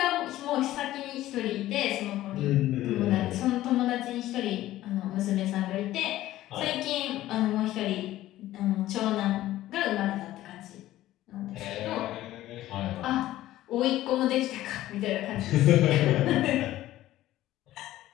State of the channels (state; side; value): quieter; right; 14.8 dB